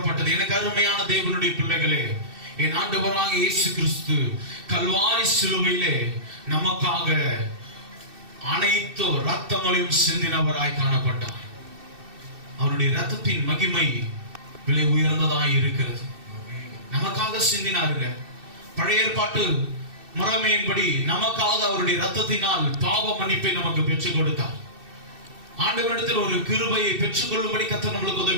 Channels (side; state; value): left; late; 2.6 ms